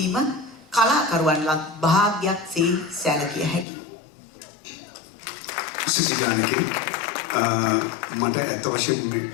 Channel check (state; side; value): drops out; right; at 3.7 s